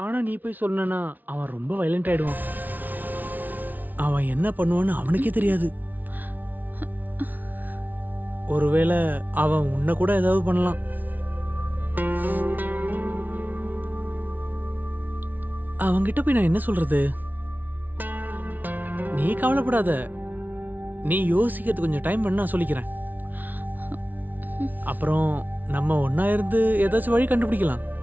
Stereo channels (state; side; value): late; left; 0.081 ms